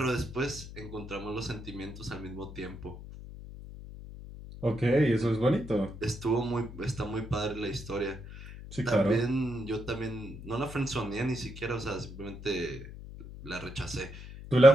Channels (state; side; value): noise; left; hum, 13 dB below the sound